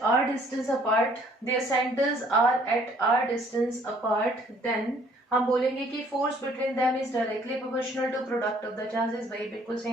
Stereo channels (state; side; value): normal; both; correlation 0.60